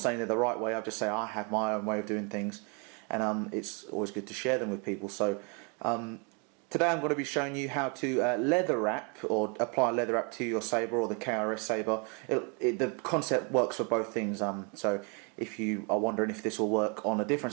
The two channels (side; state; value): left; quieter; 34.7 dB